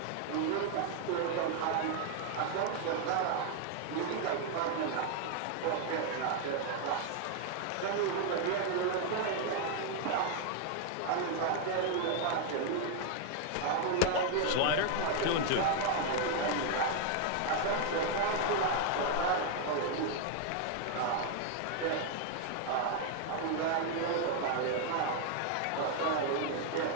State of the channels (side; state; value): both; different; correlation 0.00